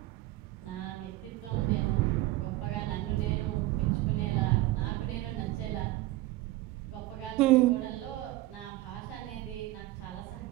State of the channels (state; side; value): quieter; left; 17.4 dB